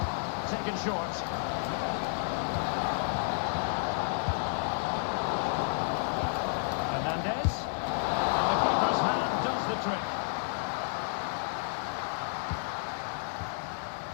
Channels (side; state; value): right; silent; digital silence